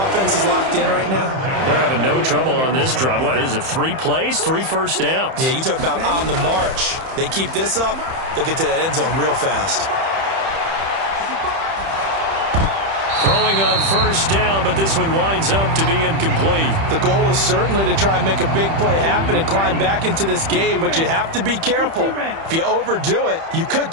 is locked in right now? They're having no trouble on this drive. What, is it 3 plays, 3 first downs? Yeah, you talk about on the march. They keep this up, they'll get to that end zone real fast. Throwing on first down, but this one winds up to be incomplete. The goal is certainly to try and make a big play happen and climb back into this game, but you have to be careful. If you overdo it, you could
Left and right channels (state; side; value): late; left; 31 ms